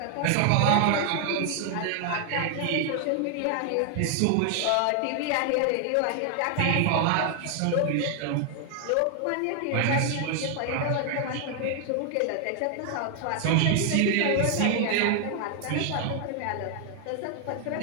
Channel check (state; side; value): different; both; correlation 0.00